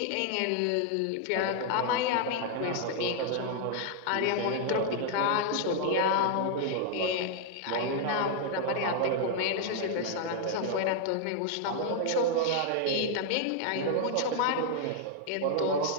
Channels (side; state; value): both; different; correlation 0.00